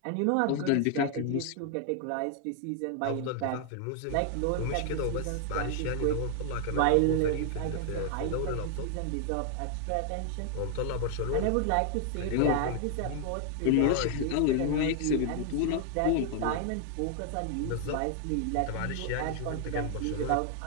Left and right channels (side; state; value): both; different; correlation 0.00